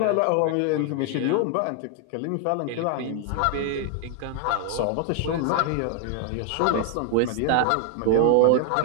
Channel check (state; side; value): different; both; correlation 0.00